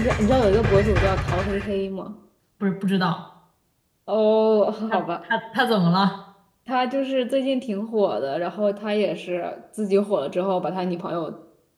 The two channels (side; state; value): both; identical; correlation 1.00